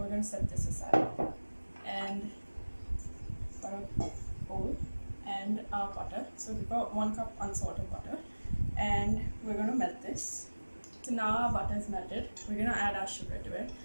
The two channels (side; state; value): both; inverted; correlation -1.00